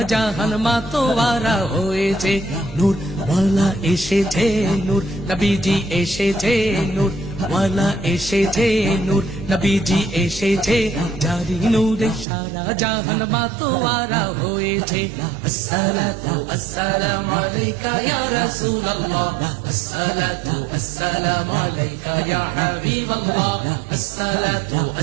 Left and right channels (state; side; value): drops out; left; at 12.2 s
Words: জাহান মাতোয়ারা হয়েছে। নূর ওয়ালা এসেছে, নূর নবীজি এসেছে, নূর ওয়ালা এসেছে, নূর নবীজি এসেছে, জারি নূরে সারা জাহান মাতোয়ারা হয়েছে। আসসালাতু আসসালামু আলাইকা ইয়া রাসূলুল্লাহ, আসসালাতু আসসালামু আলাইকা ইয়া হাবিবাল্লাহ, আসসালাতু